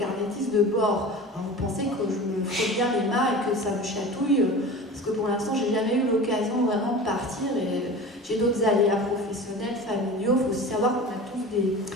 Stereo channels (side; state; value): both; normal; correlation 0.35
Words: de bord. Alors, vous pensez que je me fais bien les mains et que ça me chatouille, parce que pour l'instant, j'ai jamais eu l'occasion vraiment de partir et j'ai d'autres aléas professionnels, familiaux. Il faut aussi savoir qu'on a tous des